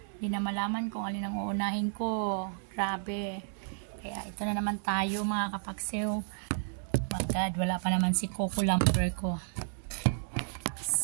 Hindi na malaman kung alin ang uunahin ko. Grabe. Kaya ito na naman tayo mga kapaksiw. My God, wala pa naman si Coco Lumber ko.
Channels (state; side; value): silent; left; digital silence